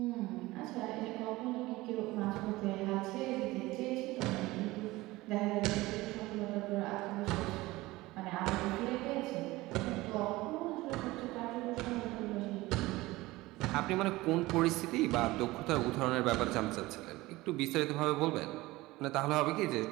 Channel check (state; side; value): quieter; left; 19.5 dB